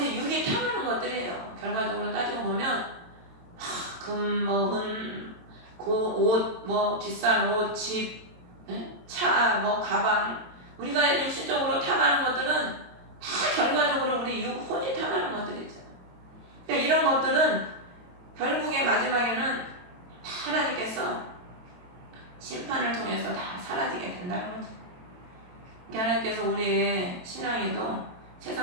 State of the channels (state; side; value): late; left; 23 ms